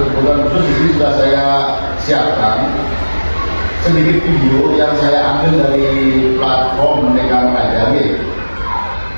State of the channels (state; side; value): inverted; both; correlation -1.00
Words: khusus. Di sini sudah saya siapkan sedikit video yang saya ambil dari platform Merdeka Mengajar.